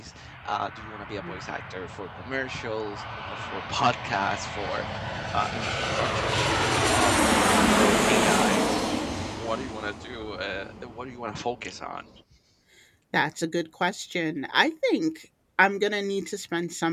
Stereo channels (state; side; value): identical; both; correlation 1.00